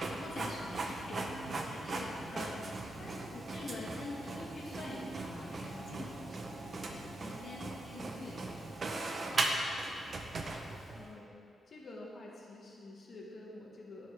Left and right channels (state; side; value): normal; both; correlation 0.85